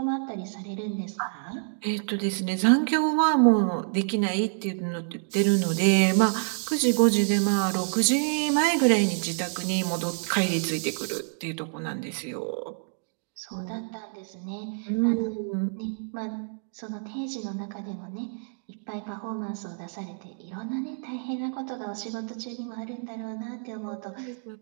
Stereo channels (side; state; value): left; silent; 60 dB below the other